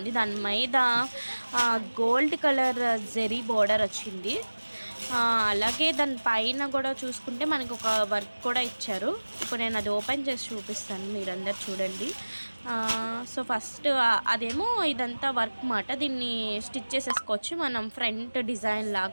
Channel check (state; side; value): inverted; both; correlation -1.00